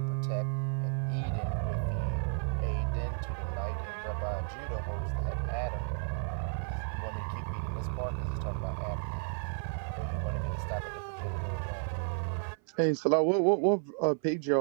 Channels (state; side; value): silent; left; 56 dB below the other